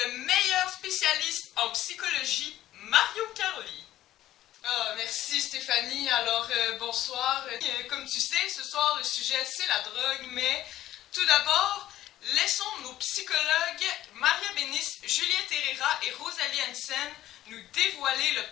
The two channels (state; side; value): quieter; right; 13.8 dB